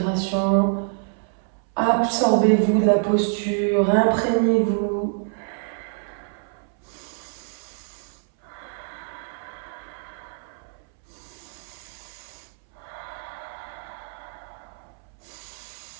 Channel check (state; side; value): silent; left; 61 dB below the other